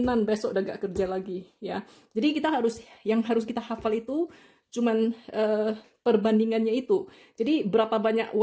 besok udah gak kerja lagi ya. Jadi yang harus kita hafal itu cuman perbandingannya itu. Jadi berapa banyak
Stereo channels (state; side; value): identical; both; correlation 1.00